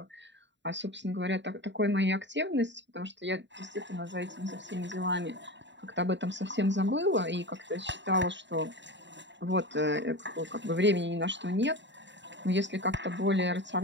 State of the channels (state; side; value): late; left; 0.52 ms